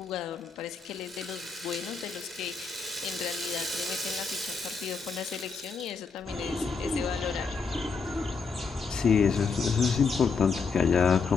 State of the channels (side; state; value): right; quieter; 5.0 dB